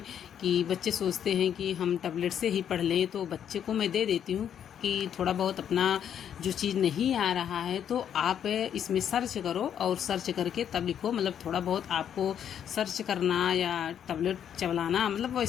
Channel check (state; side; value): quieter; right; 9.1 dB